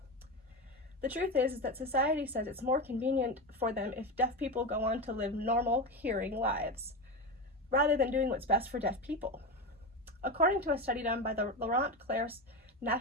The truth is that society says it's more convenient for them if deaf people go on to live normal hearing lives, rather than doing what's best for deaf people. According to a study done by the Laurent Clerc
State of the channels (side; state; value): both; normal; correlation 0.19